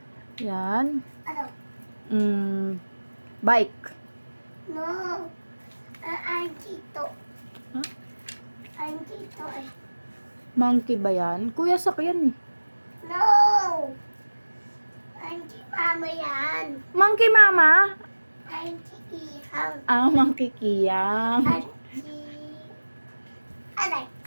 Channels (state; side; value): inverted; both; correlation -1.00